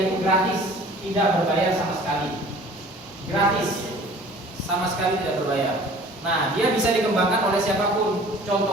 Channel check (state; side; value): normal; both; correlation 0.48